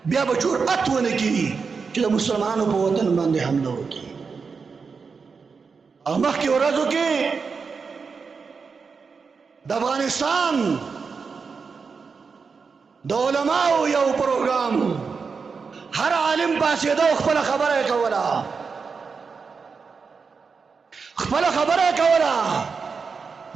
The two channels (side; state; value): left; quieter; 5.2 dB